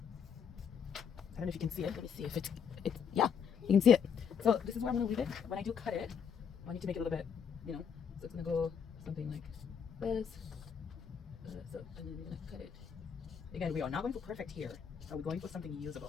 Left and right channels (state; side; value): quieter; right; 7.1 dB